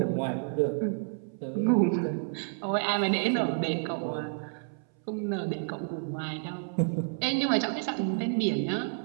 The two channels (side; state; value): left; silent; 58 dB below the other